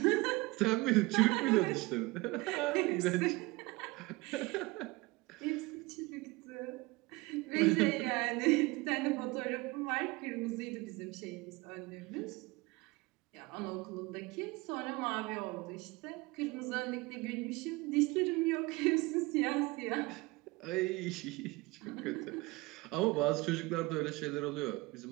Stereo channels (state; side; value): quieter; left; 23.2 dB